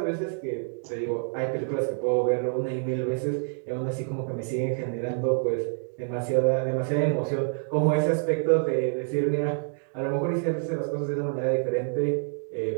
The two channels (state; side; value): silent; left; digital silence